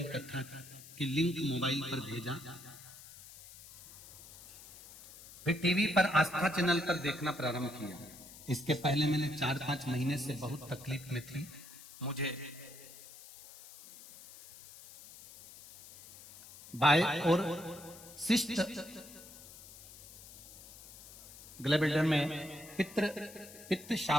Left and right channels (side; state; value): left; noise; hiss, 18 dB below the sound